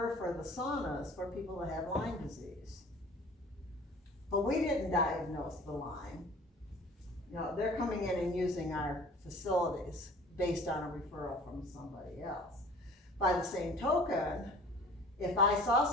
for the saunas for people that have Lyme disease. But we didn't diagnose the Lyme. You know, they're coming in and using our facilities based on a referral from somebody else. By the same token, if I saw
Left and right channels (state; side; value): normal; both; correlation 0.47